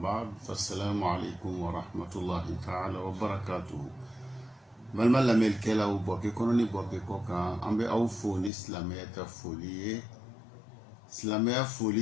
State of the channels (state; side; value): drops out; right; at 8.5 s